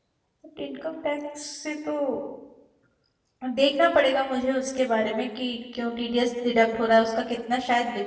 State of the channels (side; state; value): both; identical; correlation 1.00